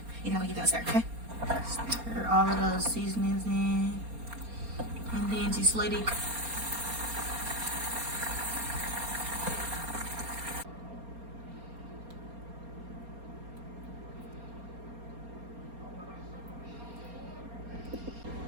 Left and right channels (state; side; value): late; left; 4.3 ms